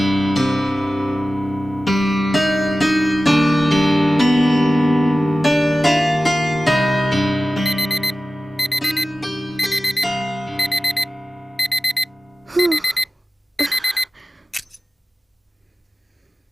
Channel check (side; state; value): both; normal; correlation 0.94